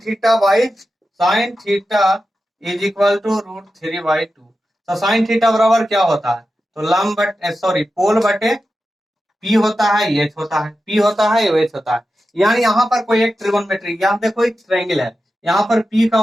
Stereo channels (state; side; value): normal; both; correlation 0.91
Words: theta is equal to √3/2। तो साइन थीटा बराबर क्या होता है, तो लंब बटे सॉरी पोल बटे पी होता है, एच होता है, पी होता है, एच होता है। यानी यहाँ पर कोई एक ट्रिगोनोमेट्री, यहाँ देखो एक ट्रायंगल है, यहाँ पर पी का